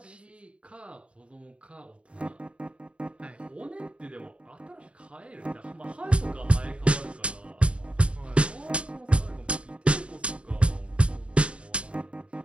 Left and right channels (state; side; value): late; left; 0.059 ms